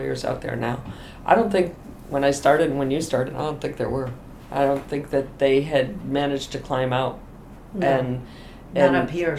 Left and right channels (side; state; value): both; identical; correlation 1.00